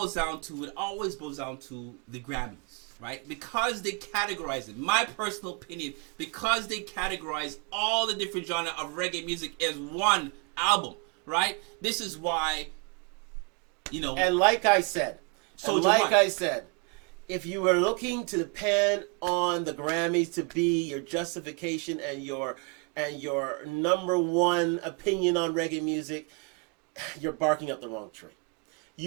down to, it always boils down to the Grammys, right? Because they categorize it, my personal opinion, because they categorize all the different genre of reggae music as one album, right? This is why, and like I said, if you were looking to depend on the Grammys to be your justification and your number one opinion on reggae music, you're barking up the wrong tree.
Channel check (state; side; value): quieter; left; 32.3 dB